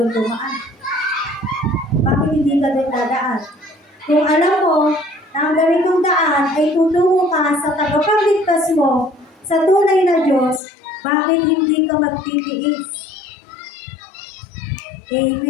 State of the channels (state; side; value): drops out; right; at 10.6 s